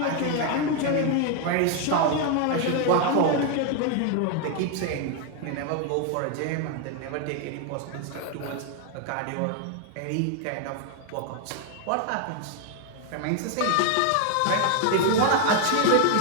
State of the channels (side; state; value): both; different; correlation 0.01